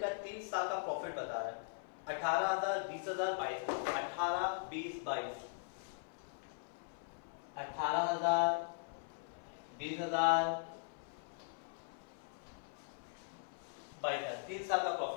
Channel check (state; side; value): silent; right; 51 dB below the other